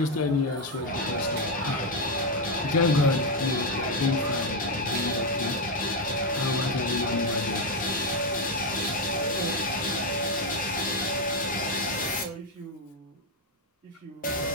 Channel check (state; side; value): normal; both; correlation 0.04